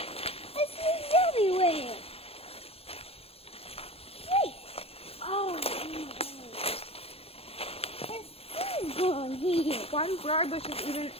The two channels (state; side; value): late; right; 0.29 ms